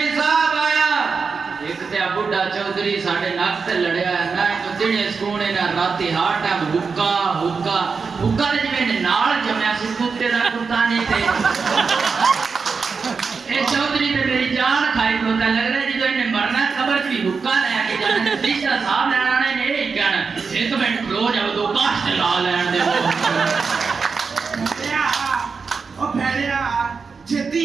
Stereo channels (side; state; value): left; quieter; 5.1 dB